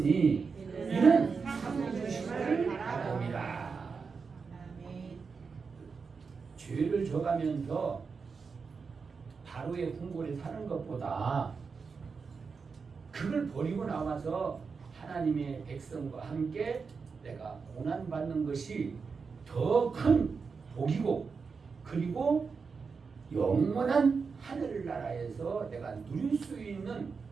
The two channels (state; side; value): quieter; left; 5.2 dB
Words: 이는 상 주심을 바랍니다. 죄를 져가면서 바로의 궁궐에 사는 것보다 그걸 버리고 나와서 하나님의 백성과 함께 내가 고난받는 것이 더 큰 복이고, 그리고 영원한 하늘나라에서 내가 누릴 수 있는